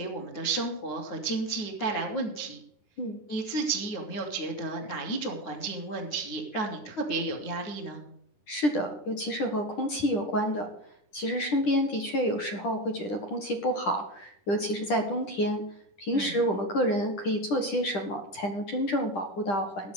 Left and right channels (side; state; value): right; late; 10 ms